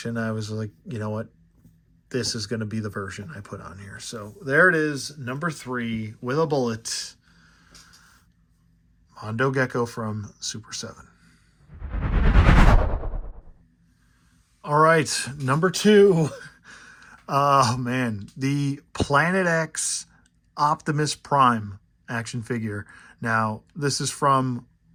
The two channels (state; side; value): identical; both; correlation 1.00